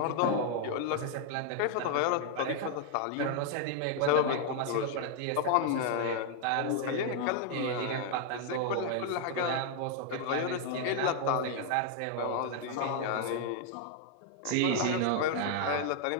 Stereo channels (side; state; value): both; different; correlation 0.00